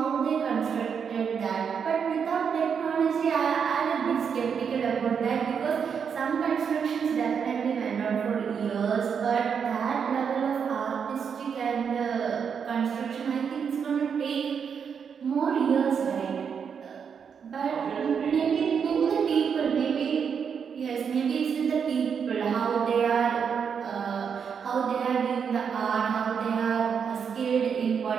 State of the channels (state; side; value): quieter; left; 6.8 dB